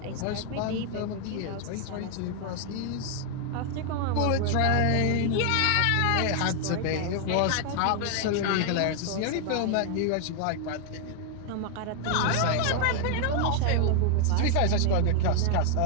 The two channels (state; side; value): different; both; correlation 0.00